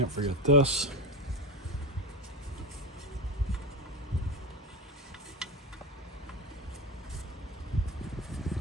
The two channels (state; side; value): normal; both; correlation 0.19